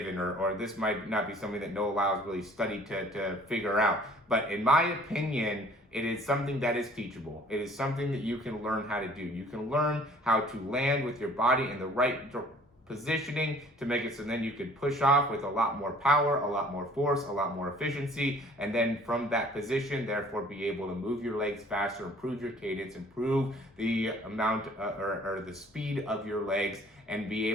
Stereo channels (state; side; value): normal; both; correlation 0.53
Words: or this might not be something that Noah Lyles really studied to figure out. But in my opinion, it is something that is teachable. It is something that you can learn how to do. You can learn how to land with your body in the right positioning to make it so then you could push off with a lot more power, a lot more force, a lot more efficiency, and then from that position, therefore be able to move your legs faster, improve your cadence, improve the amount or the speed of your legs, and be